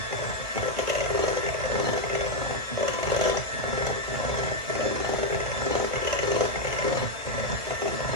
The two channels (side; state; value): left; late; 1.3 ms